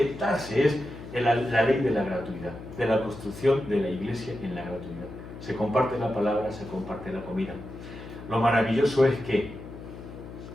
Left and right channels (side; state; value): left; noise; hum, 13 dB below the sound